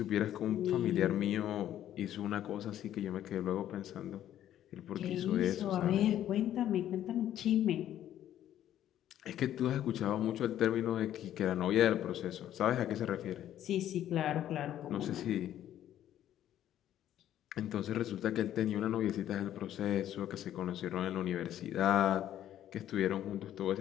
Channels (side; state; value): right; quieter; 11.7 dB